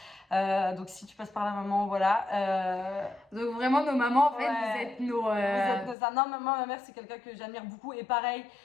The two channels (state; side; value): drops out; right; at 6.0 s